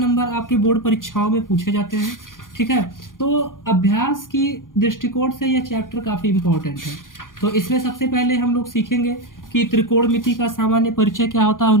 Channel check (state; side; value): late; right; 0.89 ms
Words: आपके बोर्ड परीक्षाओं में पूछे जाते हैं। ठीक है, तो अभ्यास की दृष्टिकोण से यह चैप्टर काफी इंपॉर्टेंट है। तो इसमें सबसे पहले हम लोग सीखेंगे कि त्रिकोणमिति का सामान्य परिचय क्या होता है,